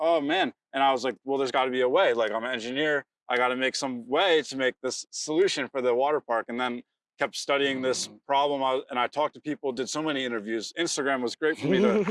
man. And I was like, well, there's got to be a way. Like I'm an engineer. I got to make some way to make this solution for the water park. And then kept studying this problem. And I talked to people, did so many interviews. Instagram was great for me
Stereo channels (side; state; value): both; identical; correlation 1.00